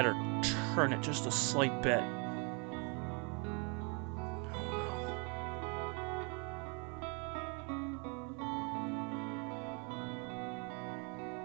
or turn it just a slight bit.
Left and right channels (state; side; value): quieter; left; 34.0 dB